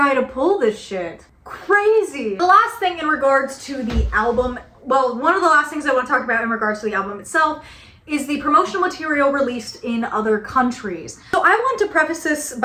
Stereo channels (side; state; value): both; identical; correlation 1.00